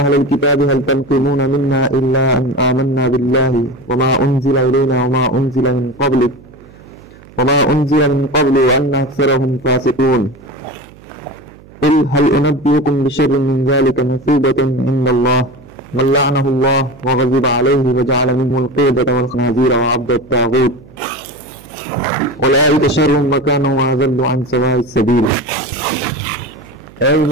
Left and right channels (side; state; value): right; noise; hum, 23 dB below the sound